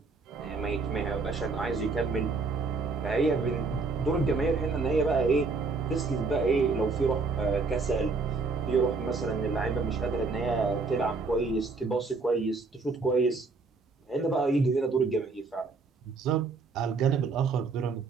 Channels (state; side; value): quieter; left; 4.1 dB